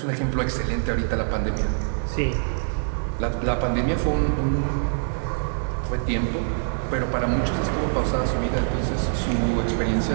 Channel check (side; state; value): left; silent; digital silence